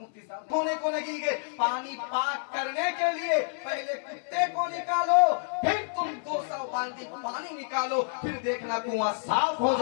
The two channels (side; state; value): right; silent; 59 dB below the other